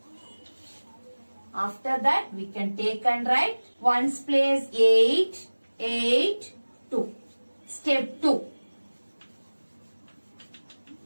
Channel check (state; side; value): inverted; both; correlation -1.00